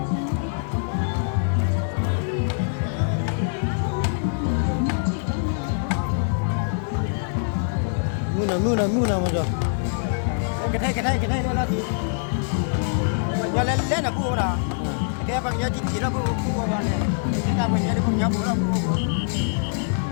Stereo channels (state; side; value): silent; right; 63 dB below the other